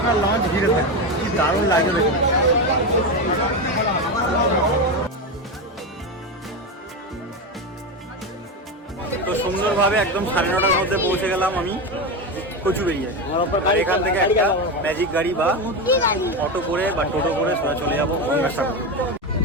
লঞ্চ ঘিরে থাকবে। কি দারুণ লাগবে দেখুন। তো সুন্দরভাবে একদম 9:30টার মধ্যে পৌঁছে গেলাম আমি কচুবেড়িয়ায়। আর এখান থেকে একটা ম্যাজিক গাড়ি বা অটো করে বা টোটো করে সোজা চলে যাবো গঙ্গাসাগর।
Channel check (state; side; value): normal; both; correlation 0.16